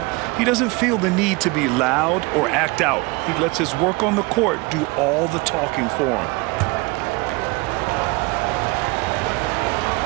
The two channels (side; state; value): left; quieter; 26.2 dB